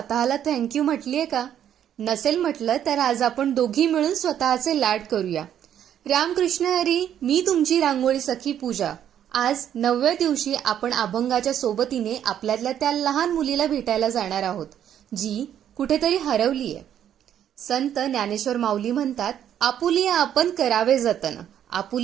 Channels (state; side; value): quieter; left; 10.1 dB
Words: थँक्यू म्हटलीये का? नसेल म्हटलं तर आज आपण दोघी मिळून स्वतःचे लाड करूया. रामकृष्ण हरी. मी तुमची रांगोळी सखी पूजा. आज 9व्या दिवशी आपण अभंगाच्या सोबतीने आपल्यातल्या त्या लहान मुलीला भेटायला जाणार आहोत, जी कुठेतरी हरवलीये. संत ज्ञानेश्वर माऊली म्हणतात, आपुलिया आपण करावे जतन.